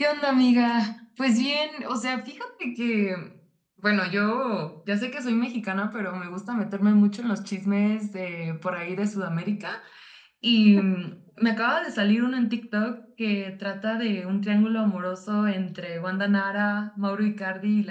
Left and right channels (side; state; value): both; identical; correlation 1.00